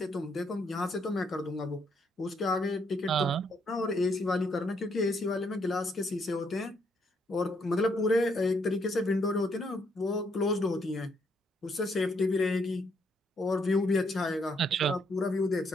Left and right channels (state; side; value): normal; both; correlation 0.73